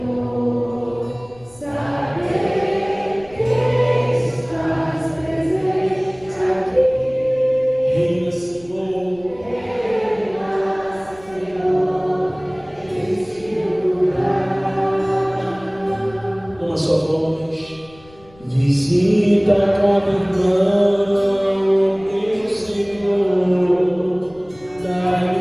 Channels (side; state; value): left; noise; rumble, 25 dB below the sound